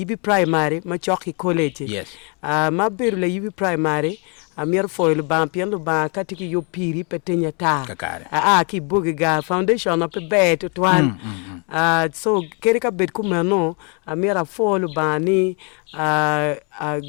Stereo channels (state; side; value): quieter; right; 35.4 dB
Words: primary ma choki college Yes. ma beru la yibi primary a mier foil ban pien lo ban katiki yo piri petenya ta Kakare. ki bugiga foundation of be to twan so keri ka bet kumano a miera foil bani